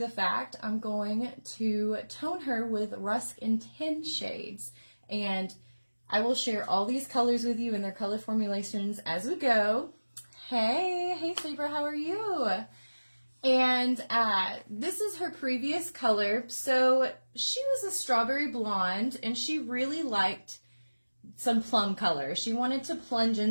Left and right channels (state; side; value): inverted; both; correlation -1.00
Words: the fact, I'm going to tone her with Rusk in 10 shades. And I will share all these colors with you and their color formulations as we go. Hey Saber, how are you? And this is her previous color. So she was a strawberry blonde and she really liked some plum color. She wanted to plunge